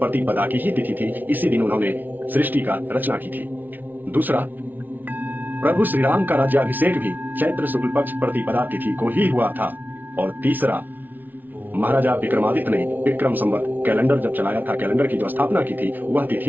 की ही तिथि थी। इसी दिन उन्होंने सृष्टि का रचना की थी। दूसरा, प्रभु श्री राम का राज्याभिषेक भी चैत्र शुक्ल पक्ष प्रतिपदा तिथि को ही हुआ था। और तीसरा, महाराजा विक्रमादित्य ने विक्रम संवत कैलेंडर जब चलाया था, कैलेंडर की जो स्थापना की थी, वह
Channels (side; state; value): left; late; 0.085 ms